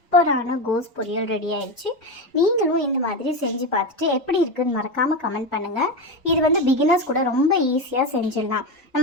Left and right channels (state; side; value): normal; both; correlation 0.16